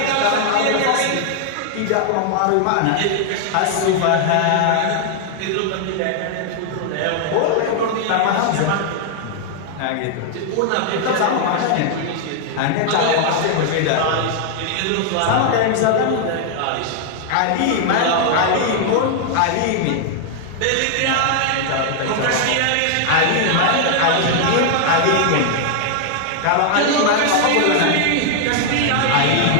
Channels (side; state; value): both; different; correlation 0.00